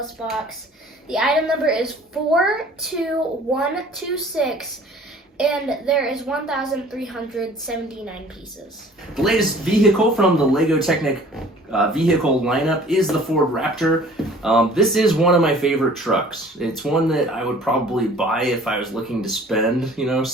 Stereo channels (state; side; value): normal; both; correlation 0.50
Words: box. The item number is 42126, and there is 1,379 pieces. The latest vehicle from the LEGO Technic vehicle lineup is the Ford Raptor. This is one of my favorite trucks. It's one that I would probably buy if I was looking to spend,